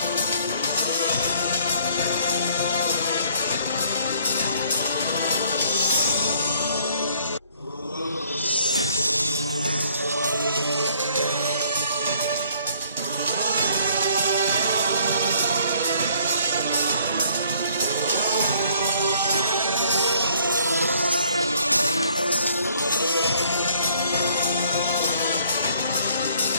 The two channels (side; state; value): both; inverted; correlation -0.61